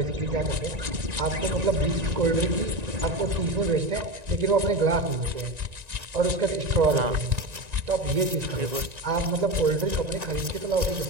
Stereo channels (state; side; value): late; left; 1.9 ms